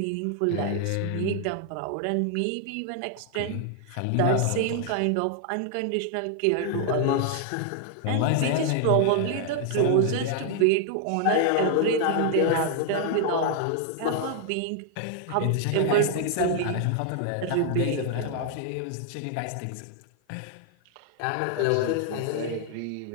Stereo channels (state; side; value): different; both; correlation 0.00